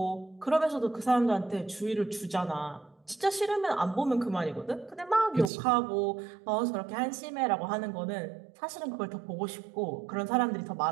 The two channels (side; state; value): left; drops out; at 5.5 s